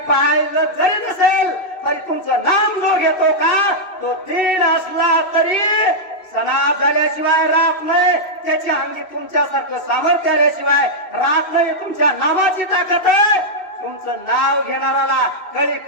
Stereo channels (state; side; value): late; right; 2.6 ms